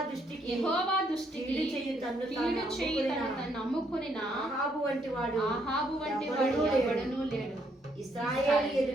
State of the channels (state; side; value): normal; both; correlation 0.72